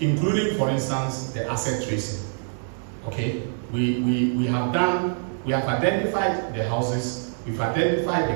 including, for instance, the asset tracing. Okay, we have identified the houses, we've identified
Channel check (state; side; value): silent; left; 62 dB below the other